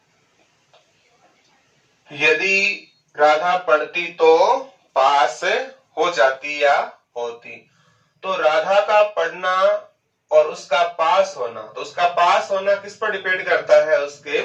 यदि राधा पढ़ती तो पास हो जाती या होती। तो राधा का पढ़ना और उसका पास होना, तो उसका पास होना किस पर डिपेंड करता है, उसके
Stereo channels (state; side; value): identical; both; correlation 1.00